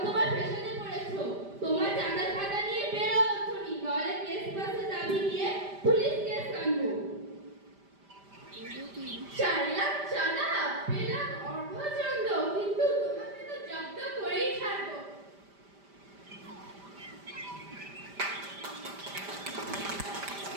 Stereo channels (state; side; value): late; left; 5.0 ms